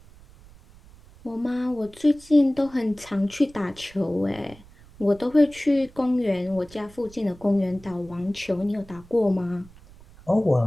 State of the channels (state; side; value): noise; right; rumble, 23 dB below the sound